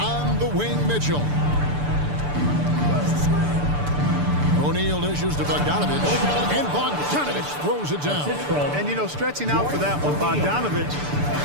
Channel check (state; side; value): late; left; 6.8 ms